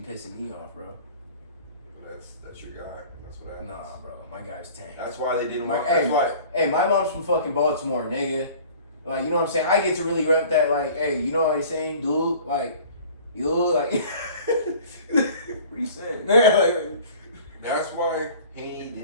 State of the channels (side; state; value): both; inverted; correlation -0.46